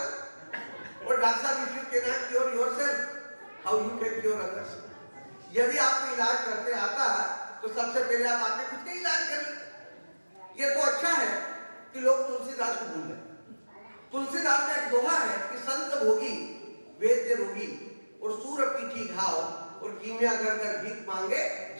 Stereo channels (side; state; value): both; inverted; correlation -1.00